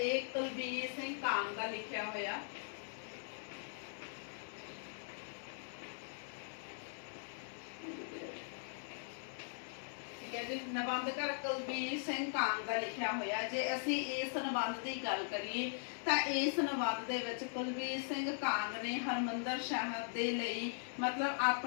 कुलबीर सिंह कांग का लिखिया होया। ठीक है जी, निबंधकार कुलबीर सिंह कांग का लिखिया होया। जे असी इस निबंध की गल करिए तो इस निबंध दे विच कुलबीर सिंह कांग ने हरमंदर साहिब दे लई मतलब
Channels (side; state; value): right; silent; digital silence